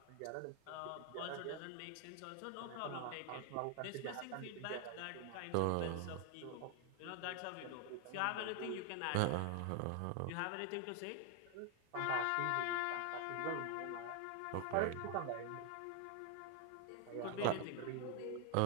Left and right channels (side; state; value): both; different; correlation 0.00